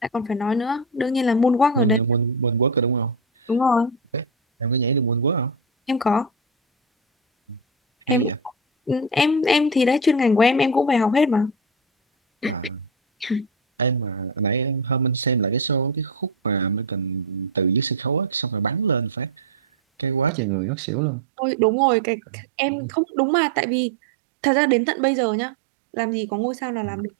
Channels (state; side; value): drops out; left; at 20.3 s